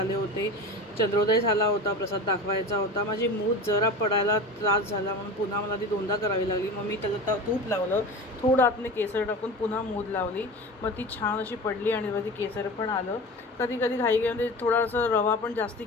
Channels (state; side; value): normal; both; correlation 0.32